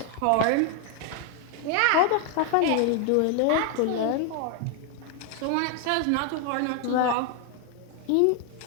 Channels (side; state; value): both; different; correlation 0.00